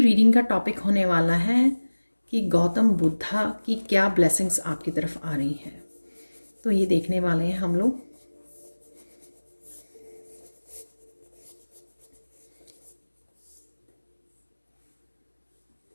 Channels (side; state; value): both; inverted; correlation -1.00